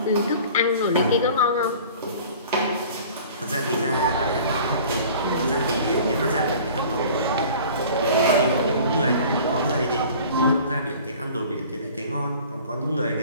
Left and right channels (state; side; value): inverted; both; correlation -0.45